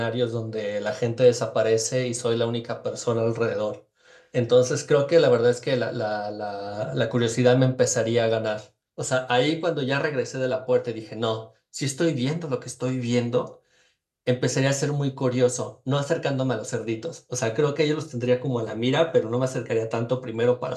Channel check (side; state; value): both; identical; correlation 1.00